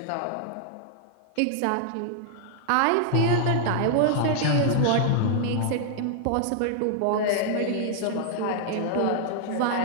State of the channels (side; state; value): both; different; correlation -0.01